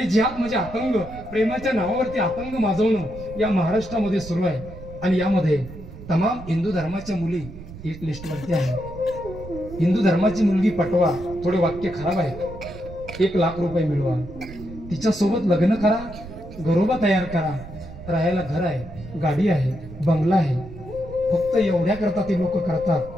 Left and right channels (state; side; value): noise; right; rumble, 14 dB below the sound